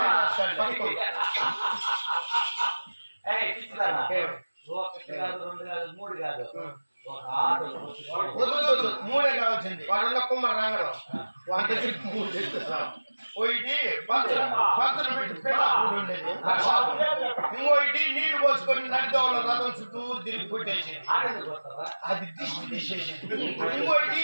కాదు, 2 కాదు, 3 కాదు, ఒక 6. 3 కావాల్సింది. వాళ్ళ కుమ్మర రాగడం వాళ్ళ దగ్గర 3 తెచ్చేస్తాం. ఒకటి పచ్చలు పెట్టి పెళ్ళాడు ఉండేది. ఇంకోటి నీళ్లు పోసుకొని నడిదోళ్ళ రథం చుట్టూ తిరిగి కొట్టేసి అది దిష్టి తీసేసి. ఇంకోటి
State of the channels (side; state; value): both; inverted; correlation -1.00